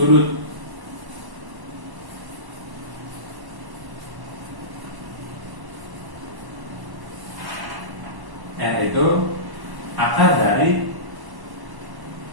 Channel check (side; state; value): left; late; 1.1 ms